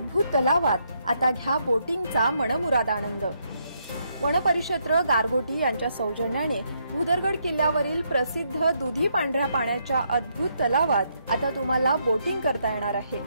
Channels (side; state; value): both; inverted; correlation -0.76